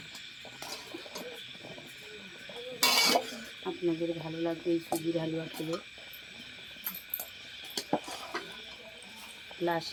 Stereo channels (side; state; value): both; identical; correlation 1.00